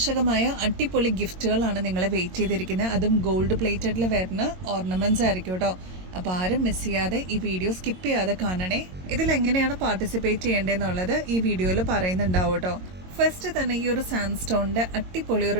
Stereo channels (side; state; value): left; late; 22 ms